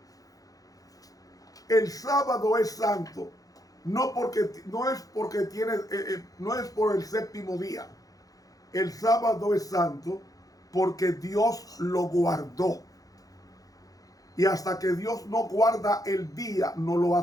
El sábado es santo, no es por el séptimo día. El sábado es santo porque Dios lo guardó. Y hasta que Dios no guarda el día, no lo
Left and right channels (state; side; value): late; right; 0.17 ms